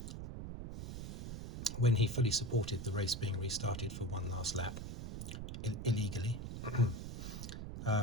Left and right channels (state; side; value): noise; right; rumble, 7 dB below the sound